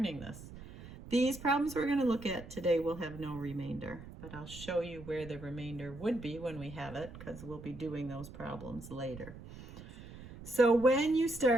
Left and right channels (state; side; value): noise; right; rumble, 14 dB below the sound